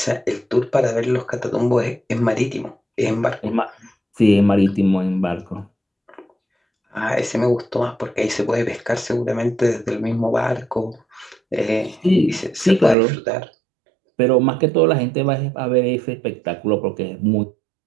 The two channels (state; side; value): drops out; left; at 13.0 s